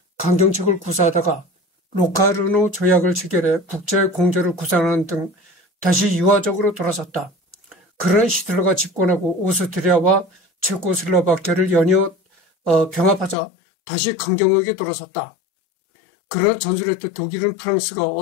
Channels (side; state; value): right; drops out; at 13.4 s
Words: 강경책을 구사하다가 로카르노 조약을 체결해 국제 공조를 구상하는 등 다시 유화적으로 돌아섰다. 그러나 히틀러가 집권하고 오스트리아와 체코슬로바키아를 연이어 병합하자 다시 강경하게 돌아섰다. 그러나 전술했던 독일은 프랑스가